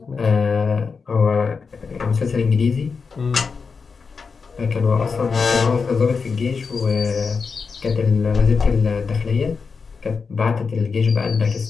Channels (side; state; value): right; quieter; 5.2 dB